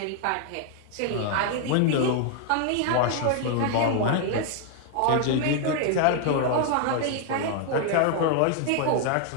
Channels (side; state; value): both; different; correlation 0.00